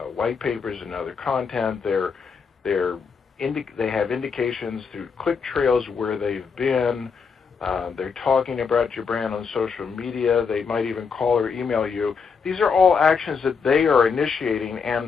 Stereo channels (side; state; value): right; quieter; 5.7 dB